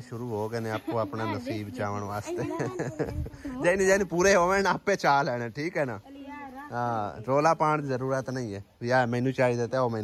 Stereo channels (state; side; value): identical; both; correlation 1.00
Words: शुरू हो गए ने आपको अपना नसीब चावन वास्ते जैनी जैनी पूरे होवे ना आपे चा लेने ठीक है ना। हाँ रोला पाने की जरूरत नहीं है भी आ मैनू चाहिए तो